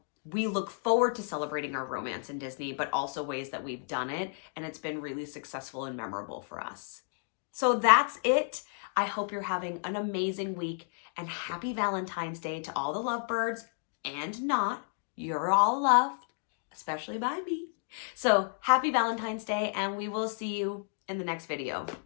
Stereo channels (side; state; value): right; silent; 57 dB below the other